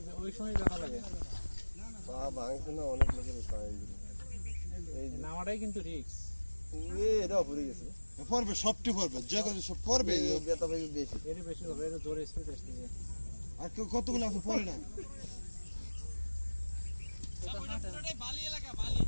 ওই সময় দেখা লাগে বাবা ভাঙছে না অনেক লোকের পায় এই নামাটাই কিন্তু রিস্ক এটা পড়ে গেছে, পড়বে সবটি পড়বে, যে কথা সব পড়বে, বেতা পাইবে বেশি, এর বেশি হবে, এর জোরে স্পিড আসছে। আর কতগুলো আছে পড়ে না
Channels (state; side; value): inverted; both; correlation -1.00